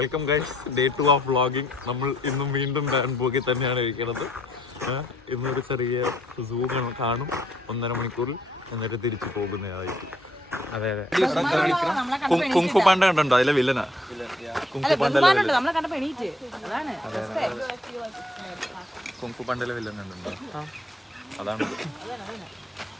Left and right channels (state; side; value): normal; both; correlation 0.67